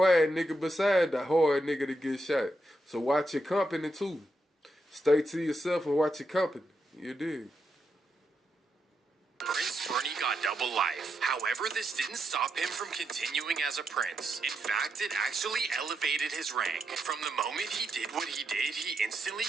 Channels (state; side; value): normal; both; correlation 0.84